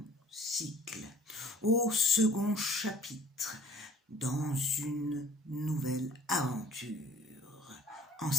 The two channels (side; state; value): both; normal; correlation 0.52